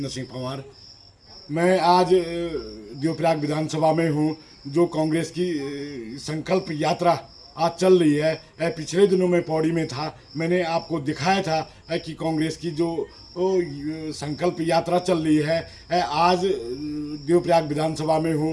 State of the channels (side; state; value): both; identical; correlation 1.00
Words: सिंह पंवार। मैं आज देवप्रयाग विधानसभा में हूँ। जो कांग्रेस की संकल्प यात्रा आज चल रही है, पिछले दिनों में पौड़ी में था। मैंने आपको दिखाया था कि कांग्रेस की जो संकल्प यात्रा चल रही है। आज देवप्रयाग विधानसभा में